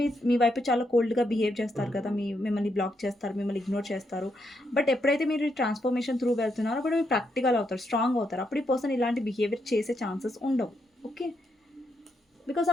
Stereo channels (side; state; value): both; normal; correlation 0.80